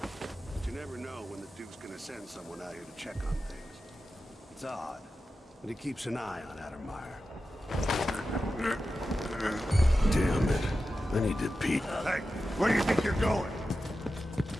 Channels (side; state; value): both; normal; correlation 0.92